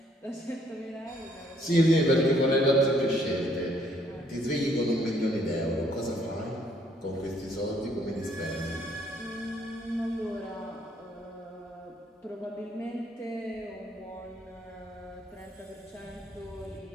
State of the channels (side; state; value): both; normal; correlation 0.66